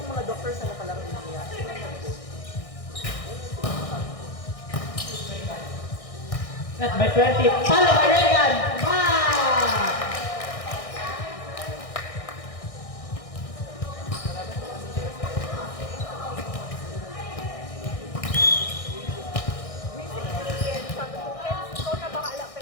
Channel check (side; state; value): right; late; 1.6 ms